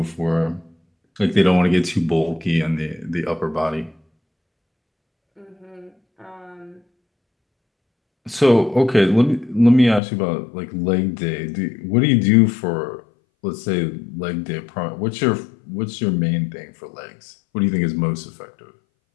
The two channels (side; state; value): right; drops out; at 10.0 s